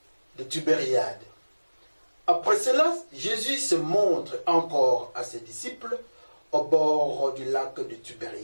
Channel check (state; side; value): inverted; both; correlation -1.00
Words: de Tibériade. Après cela, Jésus se montre encore à ses disciples au bord du lac de